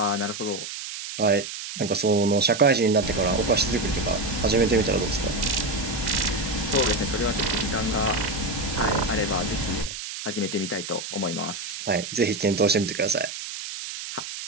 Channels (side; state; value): right; noise; hiss, 8 dB below the sound